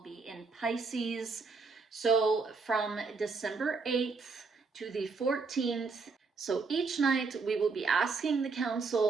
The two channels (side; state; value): left; quieter; 4.4 dB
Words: be in Pisces. So from December 8th to the 14th, so each night we will be asking the